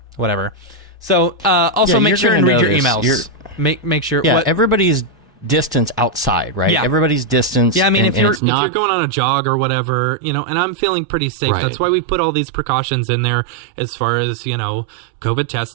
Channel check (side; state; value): left; drops out; at 8.4 s